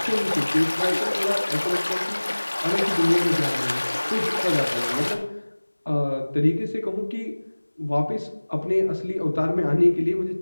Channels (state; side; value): inverted; both; correlation -1.00